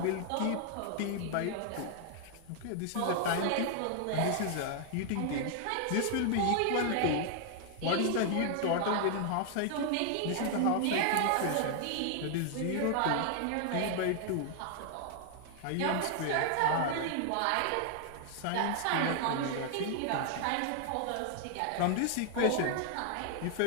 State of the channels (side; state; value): both; different; correlation 0.00